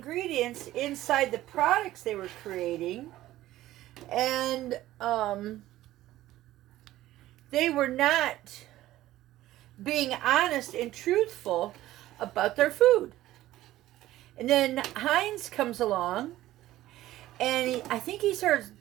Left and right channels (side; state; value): left; quieter; 15.1 dB